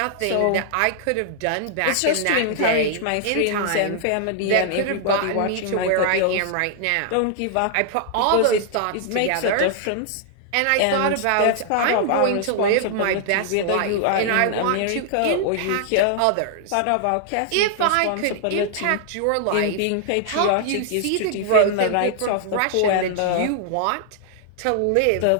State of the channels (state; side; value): different; both; correlation -0.01